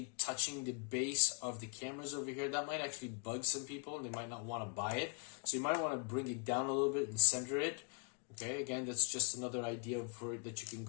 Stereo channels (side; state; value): right; quieter; 39.9 dB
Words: touching the base of the cameras over here. That might actually bug some people, and they might not want to buy it. So you might want to bring it down a little bit and center it. Okay, again, that's just another idea for it that you can